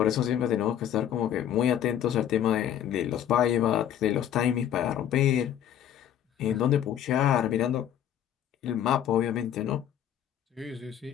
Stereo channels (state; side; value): quieter; right; 10.3 dB